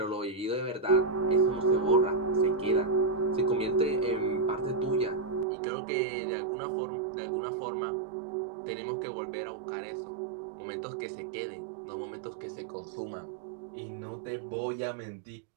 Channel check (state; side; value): drops out; left; at 5.5 s